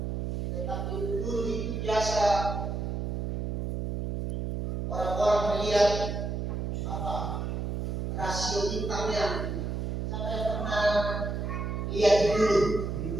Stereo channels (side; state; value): right; noise; hum, 2 dB below the sound